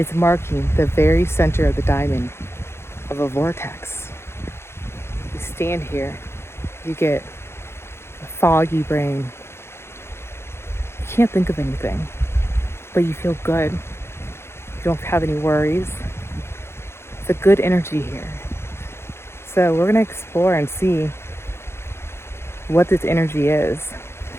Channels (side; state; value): right; late; 0.12 ms